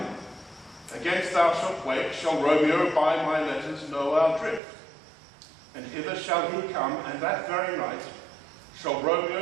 against thou shalt wake, shall Romeo by my letters know our drift. And hither shall he come, and that very night shall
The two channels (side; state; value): left; drops out; at 4.6 s